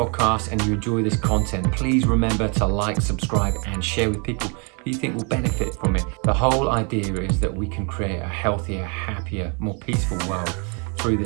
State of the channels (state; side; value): quieter; left; 35.4 dB